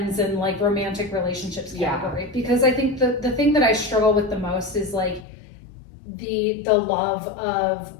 and like romantic relationships category, because I think the thing that I struggle with the most is like the love of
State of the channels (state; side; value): drops out; right; at 5.2 s